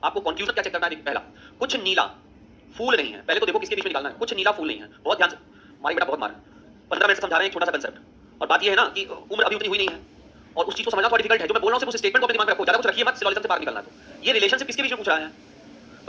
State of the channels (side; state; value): both; identical; correlation 1.00